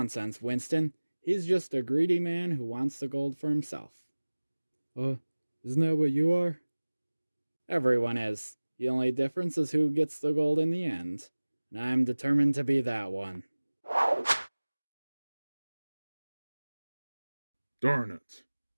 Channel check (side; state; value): both; inverted; correlation -1.00